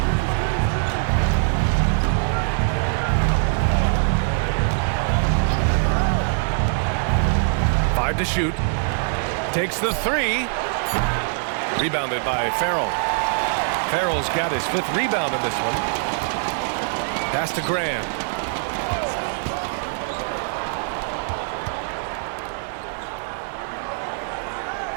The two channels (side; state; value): left; silent; digital silence